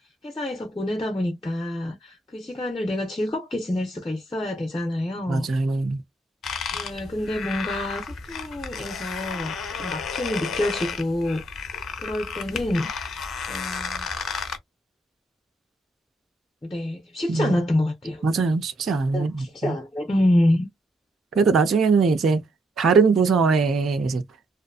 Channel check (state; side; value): normal; both; correlation 0.74